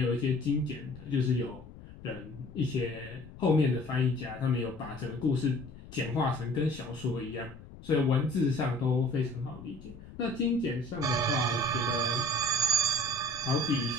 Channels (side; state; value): left; noise; rumble, 17 dB below the sound